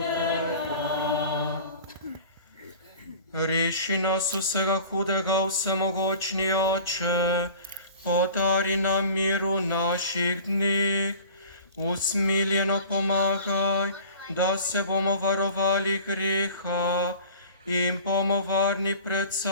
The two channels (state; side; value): inverted; both; correlation -0.43